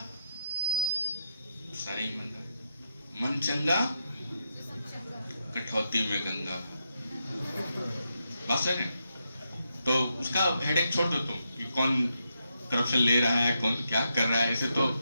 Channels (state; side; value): inverted; both; correlation -0.83